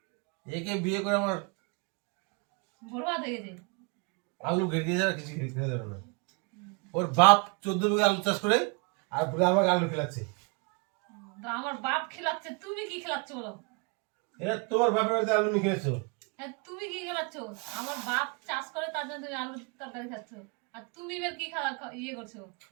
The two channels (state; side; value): quieter; left; 32.6 dB